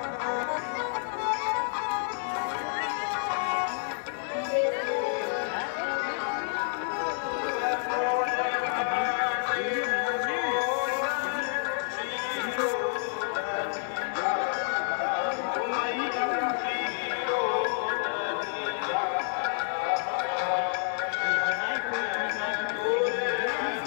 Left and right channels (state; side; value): silent; right; digital silence